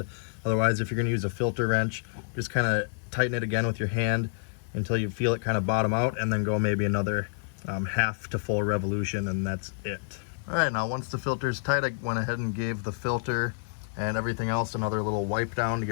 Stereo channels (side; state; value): right; silent; digital silence